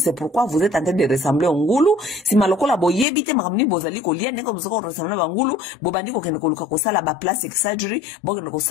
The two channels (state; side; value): drops out; right; at 3.1 s